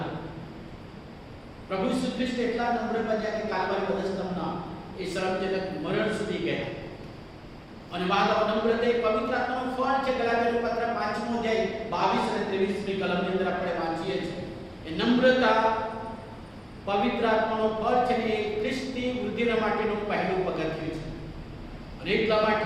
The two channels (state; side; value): identical; both; correlation 1.00